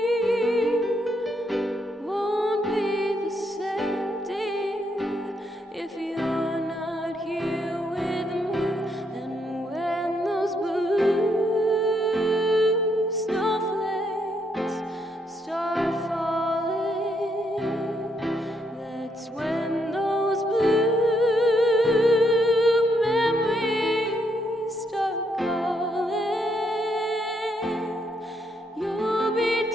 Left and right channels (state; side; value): normal; both; correlation 0.76